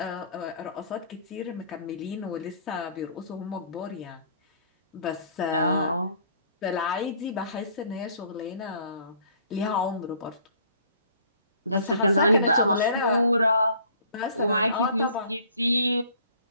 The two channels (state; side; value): inverted; both; correlation -0.55